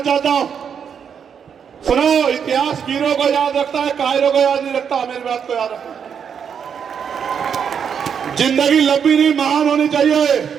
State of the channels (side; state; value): left; quieter; 7.4 dB